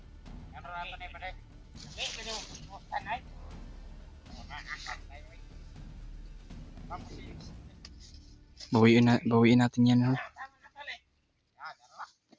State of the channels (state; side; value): identical; both; correlation 1.00